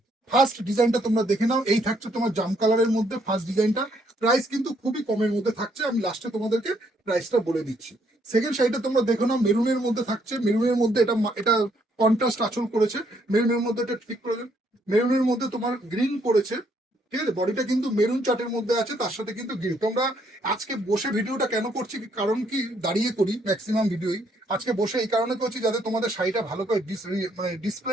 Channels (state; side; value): normal; both; correlation 0.70